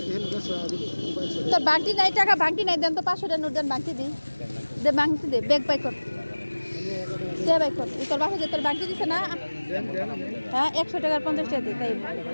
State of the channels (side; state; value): both; inverted; correlation -1.00